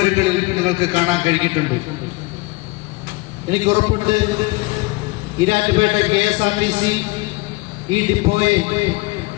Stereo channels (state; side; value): quieter; right; 23.9 dB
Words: നിങ്ങൾക്ക് കാണാൻ കഴിഞ്ഞിട്ടുണ്ട്. എനിക്ക് ഉറപ്പുണ്ട് ഈരാറ്റുപേട്ട KSRTC ഈ ഡിപ്പോയെ